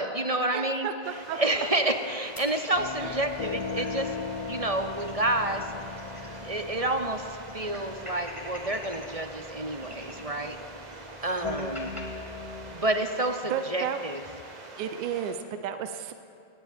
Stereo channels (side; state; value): left; late; 1.7 ms